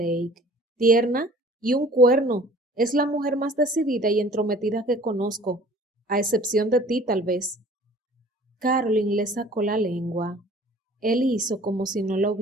Tierna y un cuerno. Es la mujer más decidida y entrometida que conozco, a excepción de ti, tal vez. Caroline le sacó la lengua. Él hizo como si no la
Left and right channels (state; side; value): normal; both; correlation 0.50